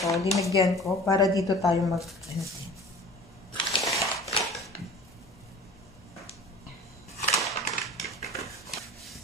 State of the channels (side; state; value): both; normal; correlation 0.43